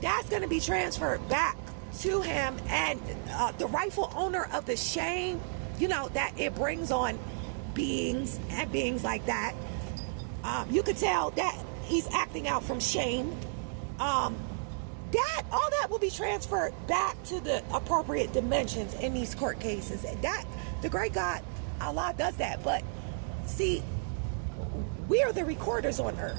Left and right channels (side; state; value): left; silent; digital silence